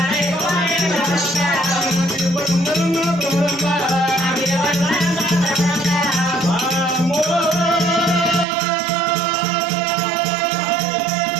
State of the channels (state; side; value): drops out; left; at 8.5 s